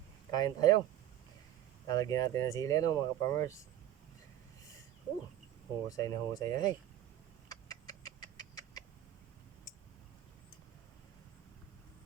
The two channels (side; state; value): left; quieter; 11.9 dB